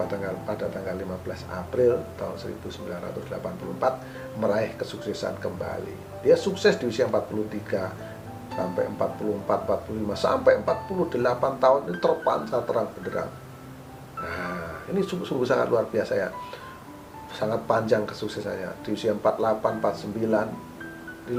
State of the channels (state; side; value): identical; both; correlation 1.00